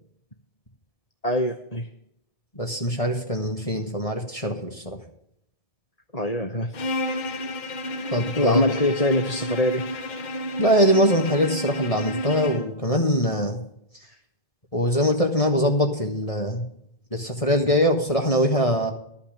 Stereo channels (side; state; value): right; late; 1.7 ms